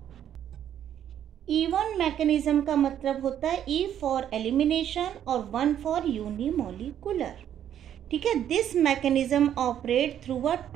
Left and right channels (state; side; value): quieter; left; 10.2 dB